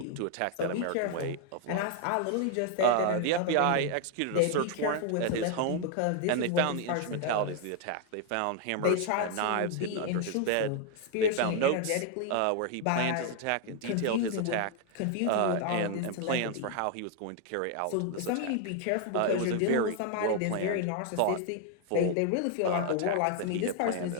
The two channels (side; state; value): both; different; correlation 0.00